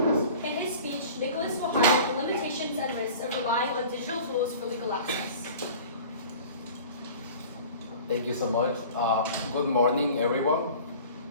Thank you so much. Good morning, everyone.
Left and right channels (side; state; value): both; inverted; correlation -0.42